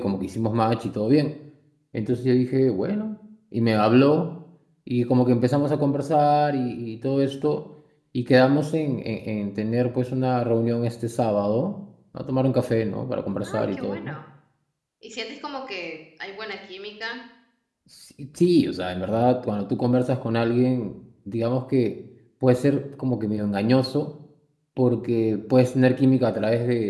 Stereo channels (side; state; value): both; identical; correlation 1.00